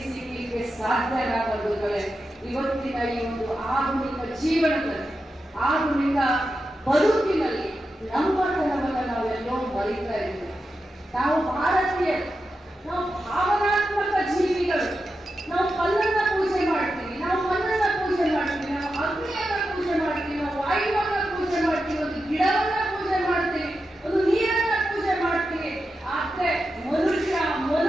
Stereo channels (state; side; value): normal; both; correlation 0.89